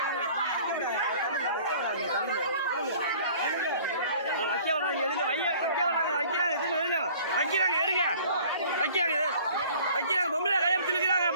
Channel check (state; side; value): inverted; both; correlation -0.51